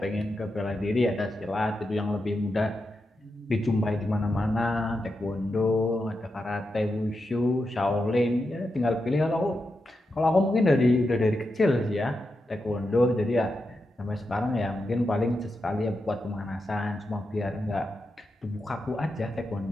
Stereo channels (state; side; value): normal; both; correlation 0.87